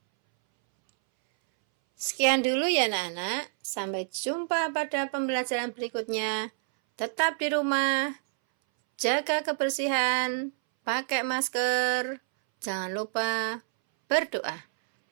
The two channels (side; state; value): left; silent; 59 dB below the other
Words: Sekian dulu ya anak-anak. Sampai jumpa pada pembelajaran berikutnya. Tetap di rumah, jaga kebersihan, pakai masker. Jangan lupa berdoa.